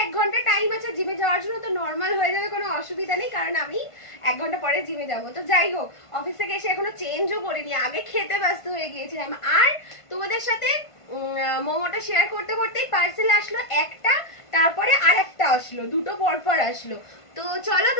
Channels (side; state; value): right; late; 1.5 ms